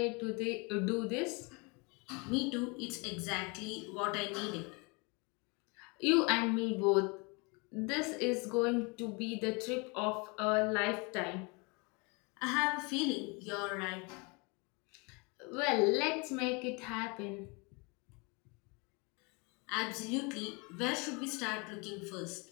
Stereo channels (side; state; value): right; quieter; 30.2 dB